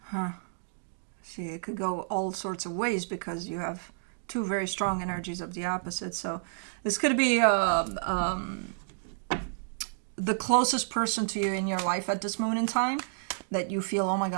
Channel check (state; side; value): silent; left; digital silence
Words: See, it could go all sorts of ways because you have two very strong energies of the opposite. So this could be the closest person to you in your life at this moment in time that you feel, oh my